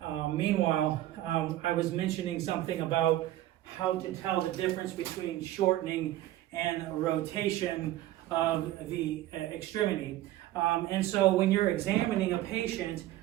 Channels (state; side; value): quieter; left; 14.7 dB